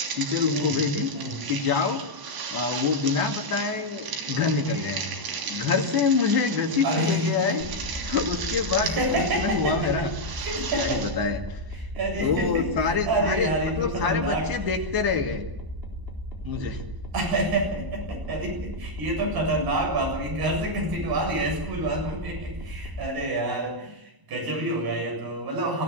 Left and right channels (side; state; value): left; late; 1.0 ms